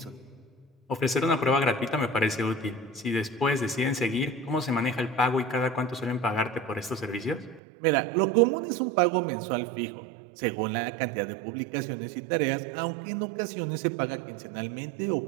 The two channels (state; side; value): drops out; left; at 7.6 s